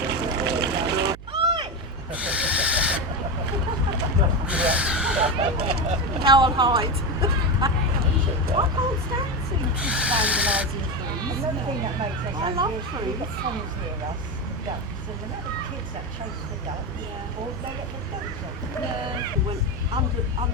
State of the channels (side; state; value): right; noise; hum, 16 dB below the sound